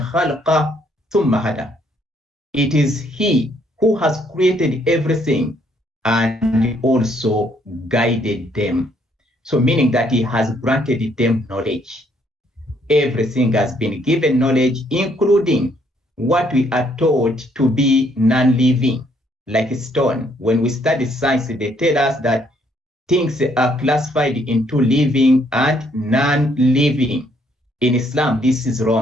ثم هدى. It is he who has created everything and also guided them. So meaning that he has granted them knowledge. Everything has been given knowledge, including what we are taught to be non-living, like stone. When we study science, they tell us that things are classified into living and non-living. In Islam, this is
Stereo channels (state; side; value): normal; both; correlation 0.68